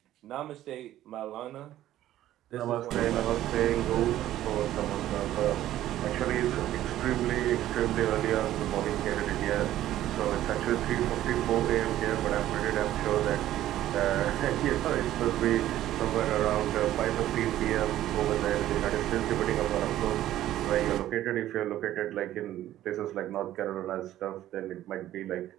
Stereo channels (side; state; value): left; quieter; 13.4 dB